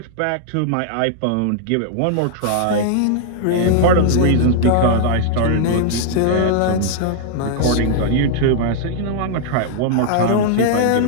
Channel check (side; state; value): both; different; correlation -0.01